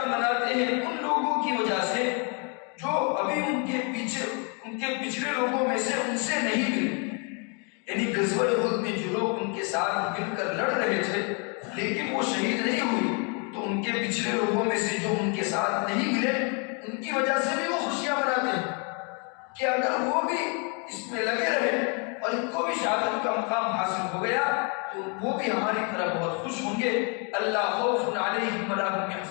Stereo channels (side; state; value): right; quieter; 36.0 dB